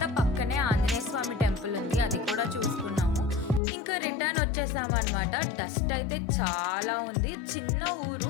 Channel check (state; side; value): drops out; right; at 3.6 s